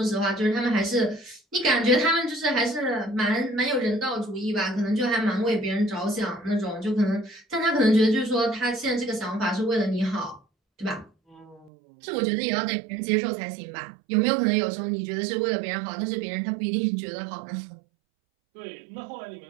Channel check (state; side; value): drops out; left; at 11.7 s